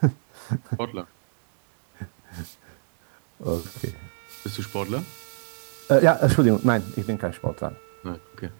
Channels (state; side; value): silent; left; digital silence